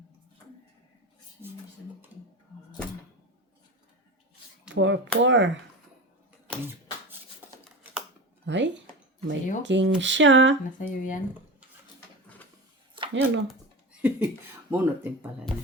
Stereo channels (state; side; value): normal; both; correlation 0.27